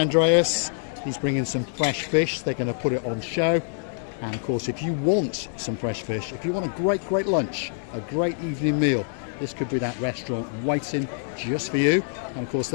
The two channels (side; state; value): right; silent; digital silence